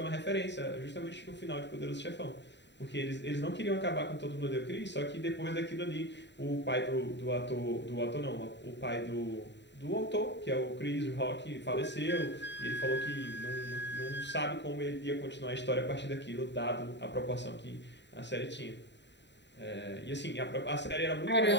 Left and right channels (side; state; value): right; late; 0.52 ms